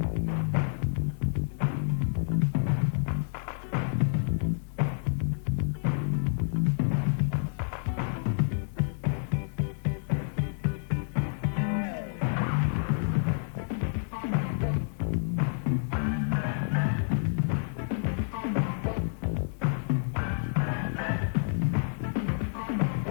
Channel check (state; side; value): silent; right; 59 dB below the other